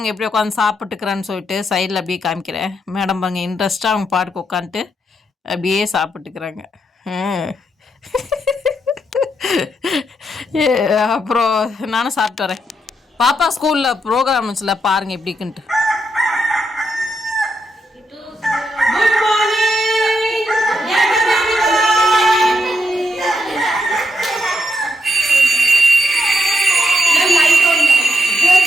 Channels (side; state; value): both; normal; correlation 0.81